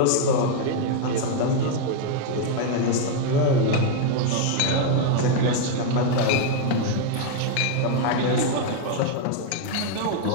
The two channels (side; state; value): both; different; correlation 0.00